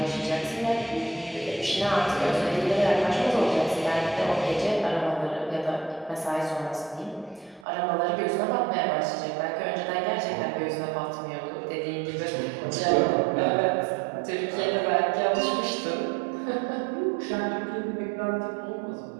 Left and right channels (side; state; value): left; drops out; at 7.7 s